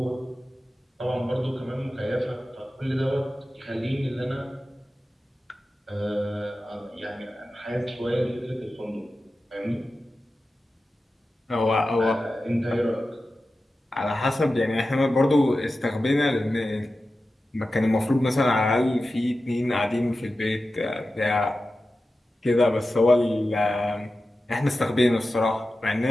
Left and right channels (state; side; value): normal; both; correlation 0.93